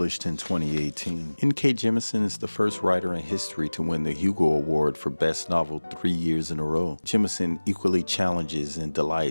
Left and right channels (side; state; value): both; inverted; correlation -1.00